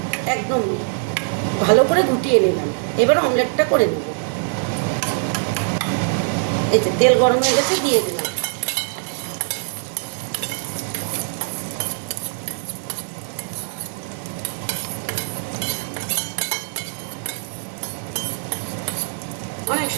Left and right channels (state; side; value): silent; left; digital silence